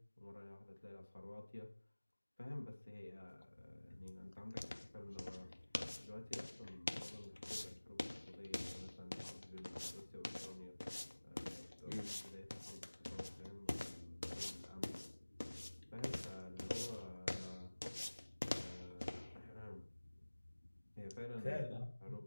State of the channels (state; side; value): inverted; both; correlation -1.00